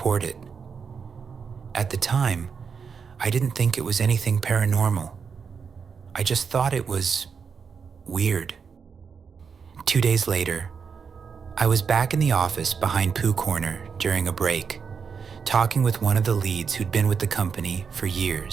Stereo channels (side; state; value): left; quieter; 6.1 dB